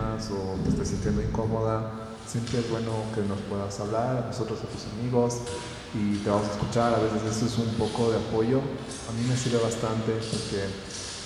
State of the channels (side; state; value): both; identical; correlation 1.00